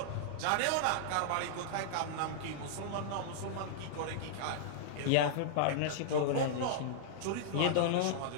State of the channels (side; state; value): both; different; correlation -0.02